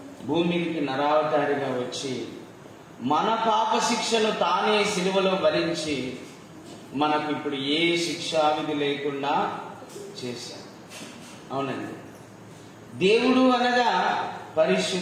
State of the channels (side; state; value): both; identical; correlation 1.00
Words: భూమికి నరావతారిగా వచ్చి మన పాప శిక్షను తానే సిలువలో భరించి మనకు ఇప్పుడు ఏ శిక్షావిధి లేకుండా చేశాడు. అవునండి. దేవుడు అనగా